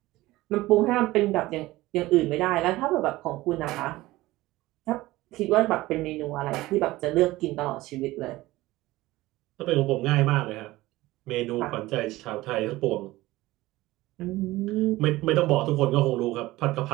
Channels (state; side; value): quieter; left; 18.2 dB